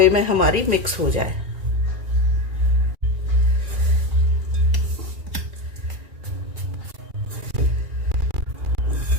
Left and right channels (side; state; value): left; late; 1.9 ms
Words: में हमारी मिक्स हो जाए।